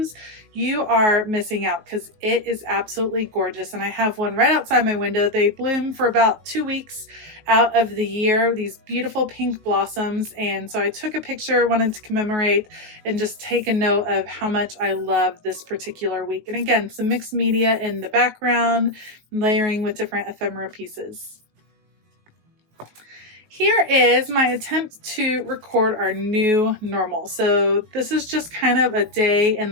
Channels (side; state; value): left; late; 19 ms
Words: you are missing out because it is absolutely gorgeous. And I have one right outside my window. They bloom for about 2 weeks out of the year, these beautiful pink blossoms. And so I took a picture, wanted to commemorate and just take a note of how much I love this particular week. And again, some mixed media in the background, layering with different ephemera pieces. Here is my attempt to record our new normal. So this is just kind of a day in